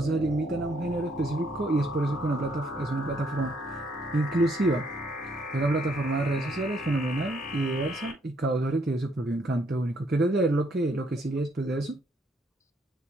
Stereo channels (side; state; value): both; normal; correlation 0.70